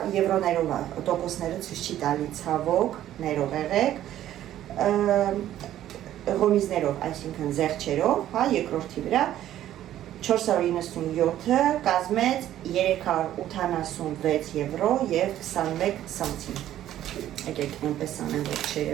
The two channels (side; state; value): left; quieter; 12.4 dB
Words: եվրոներով է, տոկոսները ցույց չի տալի ցավոք, ներող եղեք, ղոմիզներով, այսինքն զեղչերով, հա, երկրորդի վրա, 497-ը կազմեց 386 եվրո և 21 սանտիմ։ Եկեք այնպես անեմ, որ